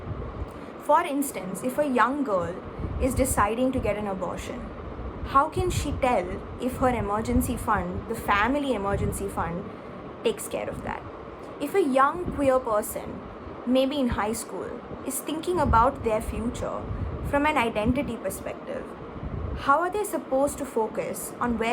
For instance, if a young girl is deciding to get an abortion, how can she tell if her emergency fund, the family emergency fund, takes care of that? If a young queer person, maybe in high school, is thinking about their future from an identity perspective, how are they supposed to focus on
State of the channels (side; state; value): both; identical; correlation 1.00